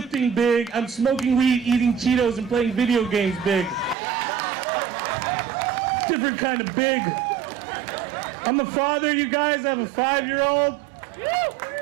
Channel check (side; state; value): left; drops out; at 4.0 s